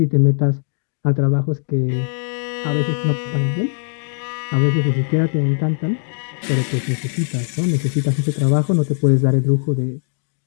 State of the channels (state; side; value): silent; right; 66 dB below the other